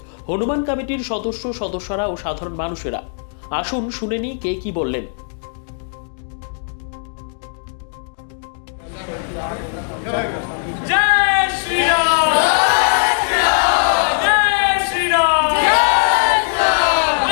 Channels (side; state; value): right; silent; digital silence